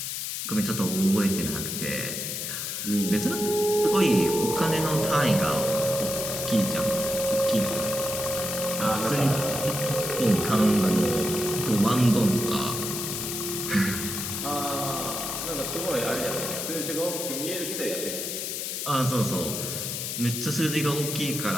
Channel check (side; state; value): left; noise; hiss, 4 dB below the sound